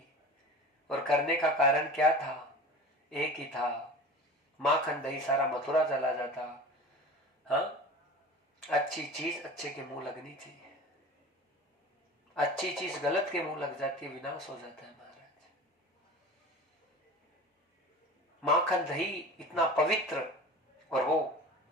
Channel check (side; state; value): both; normal; correlation 0.36